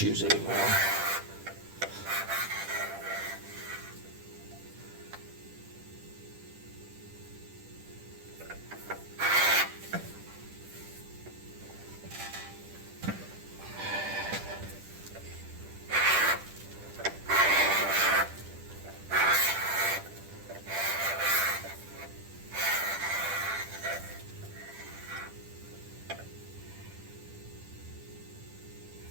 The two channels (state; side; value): late; left; 10 ms